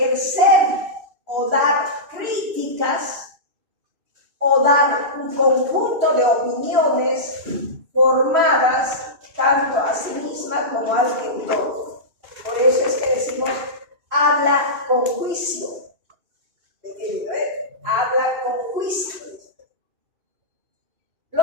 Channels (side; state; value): left; late; 2.6 ms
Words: o dar críticas o dar un conjunto de opiniones formadas tanto a sí misma como al entorno. Por eso es que decimos, habla con juicio. Habla con juicio.